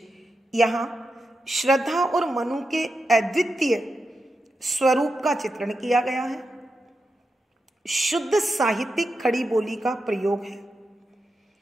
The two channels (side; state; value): both; normal; correlation 0.88